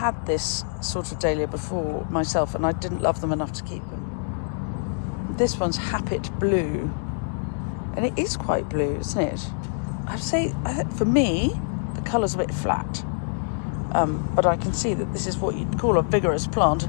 this sort of dahlia before myself, and I didn't love them enough to keep them. This one's Happet Blue. And it is quite blue, isn't it? I'd say, for me, the colour's a bit flat. But I can see that this is what you'd call a vigorous plant,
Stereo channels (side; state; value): right; silent; digital silence